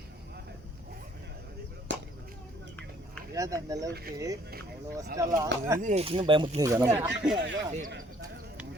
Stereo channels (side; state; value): both; normal; correlation 0.61